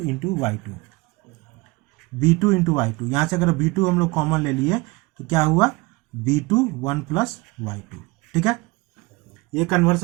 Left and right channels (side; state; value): left; quieter; 24.1 dB